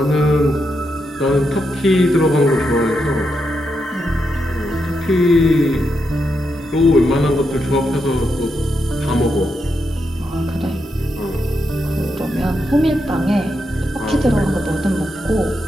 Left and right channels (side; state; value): both; normal; correlation 0.83